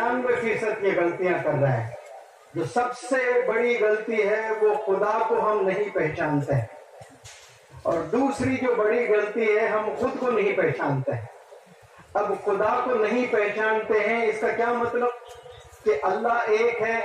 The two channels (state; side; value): identical; both; correlation 1.00